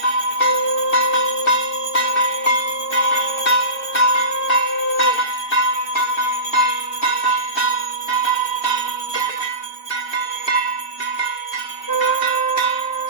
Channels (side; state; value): right; late; 2.7 ms